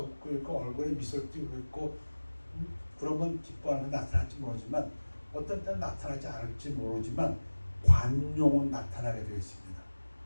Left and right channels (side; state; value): both; inverted; correlation -1.00